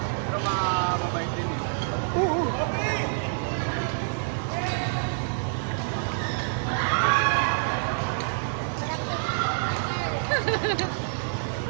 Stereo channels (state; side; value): silent; left; digital silence